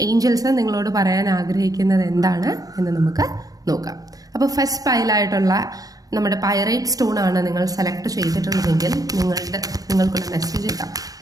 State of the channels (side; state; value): left; late; 0.17 ms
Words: ഏഞ്ചൽസ് നിങ്ങളോട് പറയാൻ ആഗ്രഹിക്കുന്നത് എന്താണ് എന്ന് നമുക്ക് നോക്കാം. അപ്പോൾ ഫസ്റ്റ് പൈലായിട്ടുള്ള നമ്മുടെ പൈറൈറ്റ് സ്റ്റോൺ ആണ് നിങ്ങൾ സെലക്ട് ചെയ്തിട്ടുണ്ടെങ്കിൽ നിങ്ങൾക്കുള്ള മെസ്സേജ് ഇടാം.